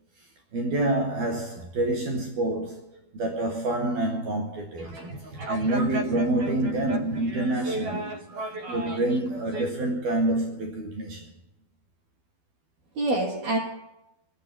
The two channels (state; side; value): late; left; 12 ms